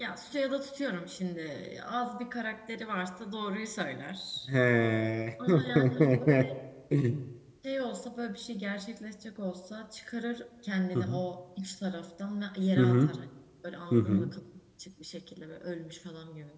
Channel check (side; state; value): both; identical; correlation 1.00